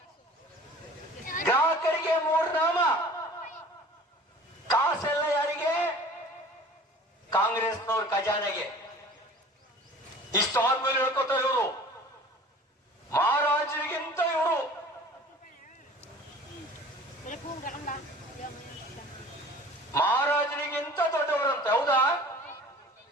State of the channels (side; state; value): both; normal; correlation 0.45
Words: ಗ್ರಾಹಕರಿಗೆ 3 ನಾಮ. ಕಾಸೆಲ್ಲ ಯಾರಿಗೆ? ಕಾಂಗ್ರೆಸ್ನವ್ರ ಖಜಾನೆಗೆ. ಇಷ್ಟು ಆದ್ಮೇಲೆ ಹೇಳ್ಕೊತಾರೆ ಇವರು ಮಹಾರಾಜರಿಗಿಂತ ಇವರು ಮಹಾರಾಜರಿಗಿಂತ ದೊಡ್ಡವರಂತೆ. ಹೌದಾ?